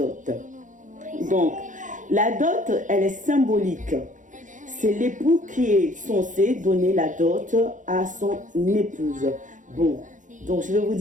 Donc, la dot, elle est symbolique. C'est l'époux qui est censé donner la dot à son épouse. Bon, donc je vais vous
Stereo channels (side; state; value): left; late; 0.37 ms